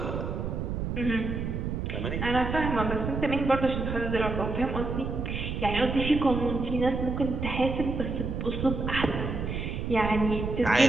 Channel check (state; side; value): noise; right; rumble, 3 dB below the sound